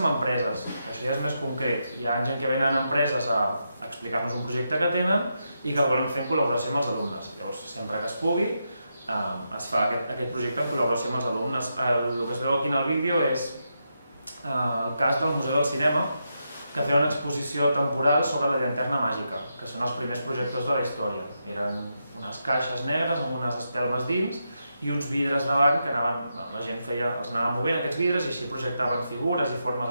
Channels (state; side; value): inverted; both; correlation -0.84